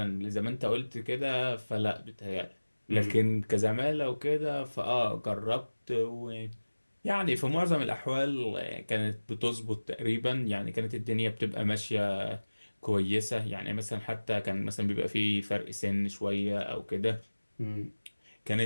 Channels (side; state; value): both; inverted; correlation -1.00